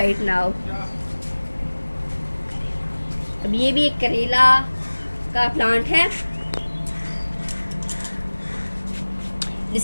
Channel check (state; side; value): inverted; both; correlation -1.00